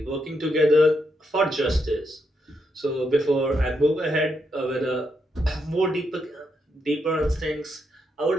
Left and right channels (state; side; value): normal; both; correlation 0.80